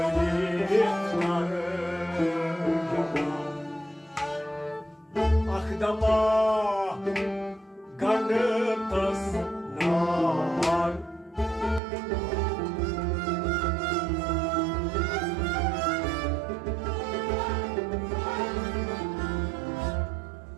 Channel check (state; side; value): drops out; left; at 11.8 s